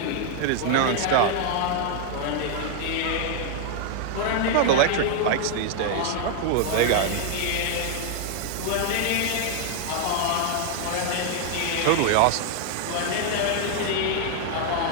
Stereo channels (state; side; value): different; both; correlation 0.00